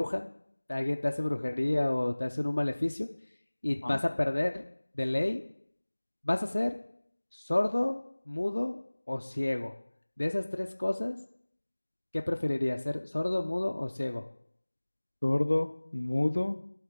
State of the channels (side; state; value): both; inverted; correlation -1.00